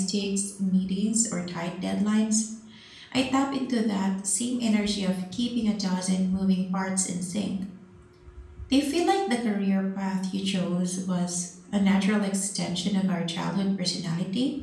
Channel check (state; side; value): identical; both; correlation 1.00